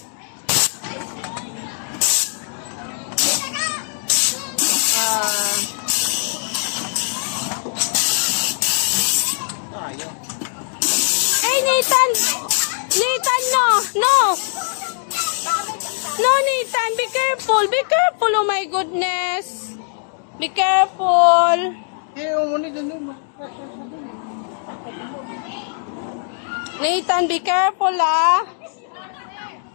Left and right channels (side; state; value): right; silent; 65 dB below the other